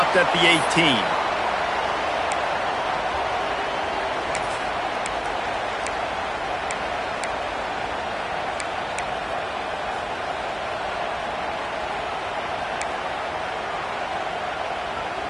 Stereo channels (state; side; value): identical; both; correlation 1.00